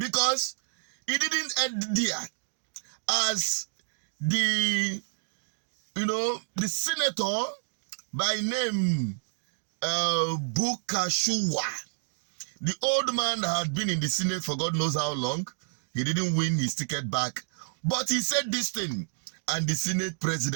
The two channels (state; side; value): silent; left; digital silence